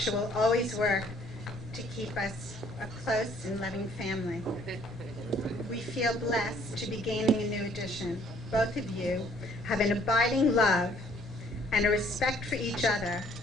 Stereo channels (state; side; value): normal; both; correlation 0.61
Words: will always work to keep us a close and loving family. We feel blessed to be gaining a new addition. Both of you have an abiding love and a respect for each other